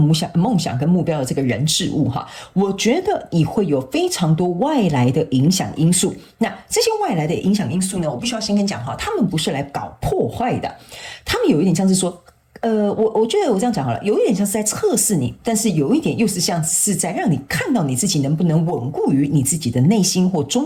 想跟目標的這個人事物哈，我覺得你會有非常多外來的影響因素。那這些外來的影響因素呢，我必須要先跟你講哈，他們不是來搞破壞的，他們有一點像是說。我覺得我這樣講好了，有一點像是在測試你，但是有一點又是像是在讓你看到你自己能不能穩固於你自己的內心或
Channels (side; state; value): both; identical; correlation 1.00